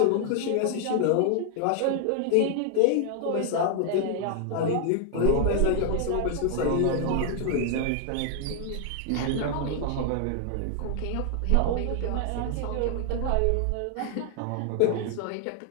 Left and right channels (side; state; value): both; different; correlation 0.00